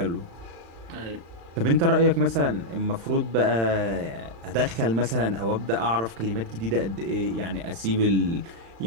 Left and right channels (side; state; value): left; late; 35 ms